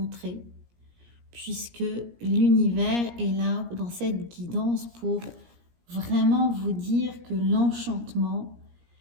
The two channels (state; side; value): late; left; 17 ms